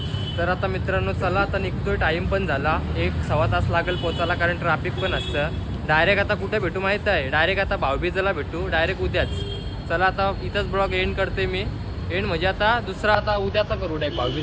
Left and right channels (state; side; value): identical; both; correlation 1.00